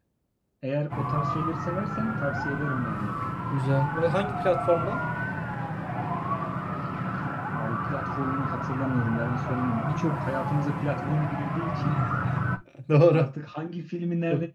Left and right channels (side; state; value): both; identical; correlation 1.00